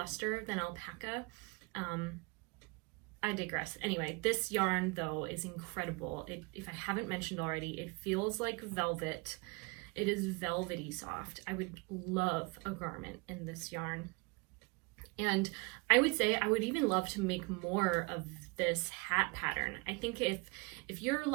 than alpaca. I digress. Anyway, this yarn though is incredible. If I haven't mentioned already, it feels like velvet. It is velvety soft. I would love a garment in this yarn. And I would say I would even love to make more of this hat pattern. I think if you're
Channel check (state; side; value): quieter; left; 29.0 dB